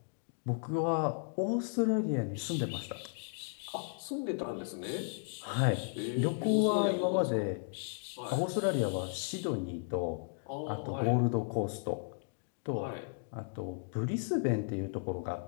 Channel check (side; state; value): right; silent; digital silence